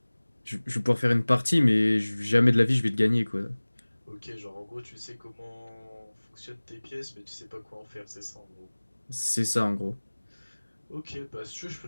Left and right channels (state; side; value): inverted; both; correlation -1.00